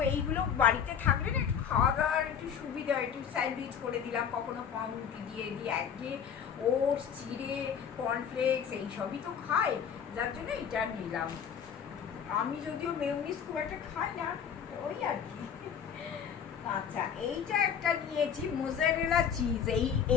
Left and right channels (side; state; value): right; quieter; 7.8 dB